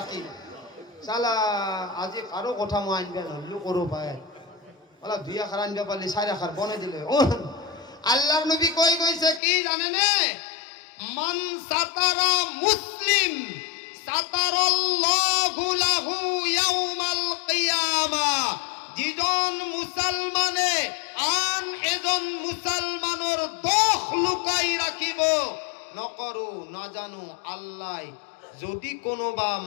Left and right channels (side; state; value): right; drops out; at 9.4 s